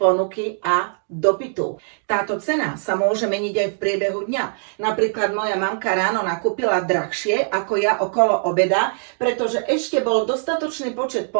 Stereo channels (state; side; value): silent; left; digital silence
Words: ponuky a dopytu. Táto cena sa môže meniť aj v priebehu dňa. Napríklad moja mamka ráno nakúpila drahšie ako ja okolo obeda, pretože ešte bol dostatočný počet